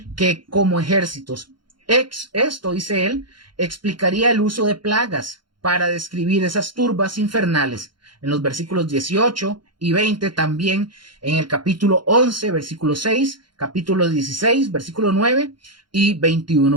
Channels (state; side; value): late; left; 0.72 ms